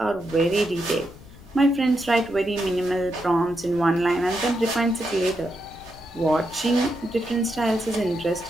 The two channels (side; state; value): left; noise; rumble, 21 dB below the sound